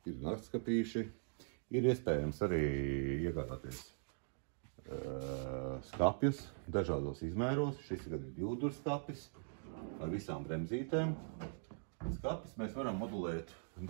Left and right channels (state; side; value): silent; left; digital silence